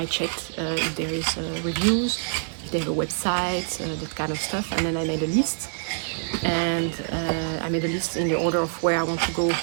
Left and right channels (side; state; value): left; silent; digital silence